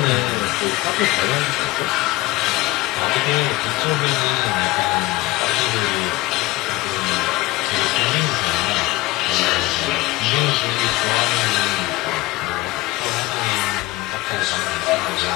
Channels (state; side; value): quieter; right; 19.9 dB